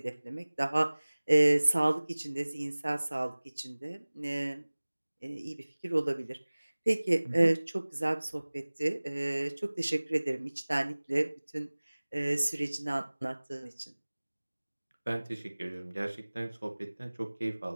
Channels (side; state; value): both; inverted; correlation -1.00